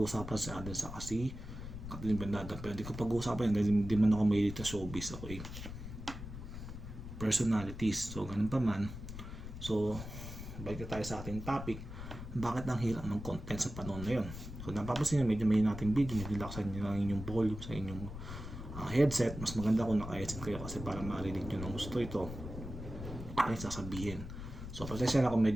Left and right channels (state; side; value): noise; left; rumble, 9 dB below the sound